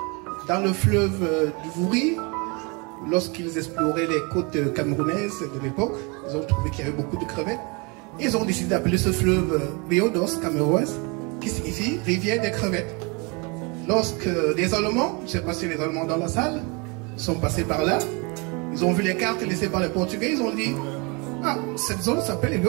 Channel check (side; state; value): left; quieter; 30.3 dB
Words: dans le fleuve du Vouri. Lorsqu'ils exploraient les côtes camerounaises de l'époque, ils ont trouvé qu'il y avait beaucoup de crevettes. Ils ont décidé d'appeler ce fleuve Rio dos Cameroes, qui signifie rivière des crevettes. Lorsque les Allemands, je ne sais pas si les Allemands dans la salle, sont passés par là, ils ont vu les cartes laissées par les Portugais, ils ont dit « Ah, cette zone s'appelle